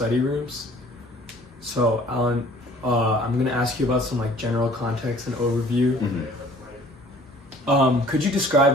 rooms. So, Alan, I'm going to ask you about some general context and overview. Could you describe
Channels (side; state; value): both; normal; correlation 0.53